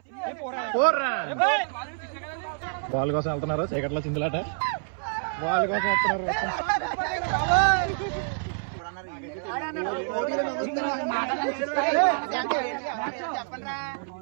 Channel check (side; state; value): left; silent; 60 dB below the other